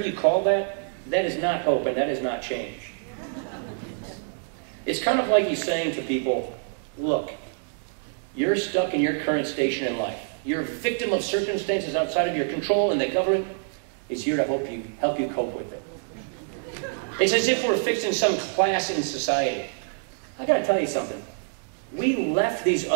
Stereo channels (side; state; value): left; silent; digital silence